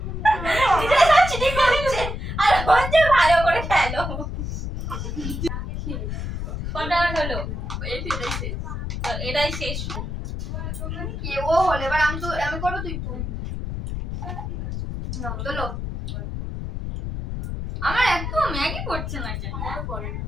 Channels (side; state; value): left; noise; rumble, 5 dB below the sound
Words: এটা চিটিং করছে আর হচ্ছে ভালো করে খেলো কটা হলো এটাই শেষ তো এটাই শেষ কি ও হলো, এবার আমি করবো, তুই তুল। নাও তোলো। আমার এত ম্যাগি পড়ছে না কেন?